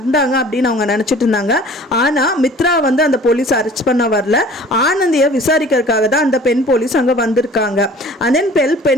அப்படின்னு அவங்க நினைச்சிட்டு இருந்தாங்க. ஆனா மித்ரா வந்து அந்த போலீஸ் அரெஸ்ட் பண்ண வரல, ஆனந்தியை விசாரிக்கிறதுக்காக தான் அந்த பெண் போலீஸ் அங்க வந்திருக்காங்க. and then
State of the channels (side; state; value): both; normal; correlation 0.47